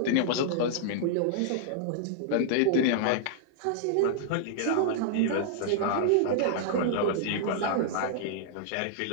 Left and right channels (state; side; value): different; both; correlation -0.01